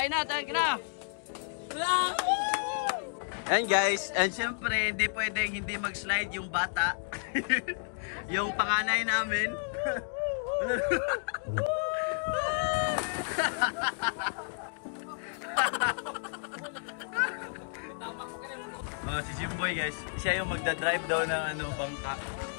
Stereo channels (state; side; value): silent; right; digital silence